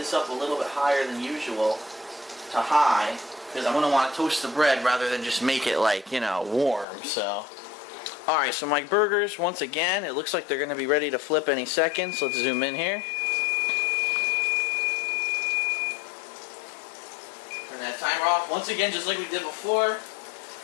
up a little bit higher than usual to high, because I'm going to want to toast the bread rather than just make it like, you know, warm. So, alright, so my burgers, once again, it looks like they're going to be ready to flip any second. So let's zoom in here. Turn that timer off. Once again, just like we did before,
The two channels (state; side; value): drops out; right; at 6.9 s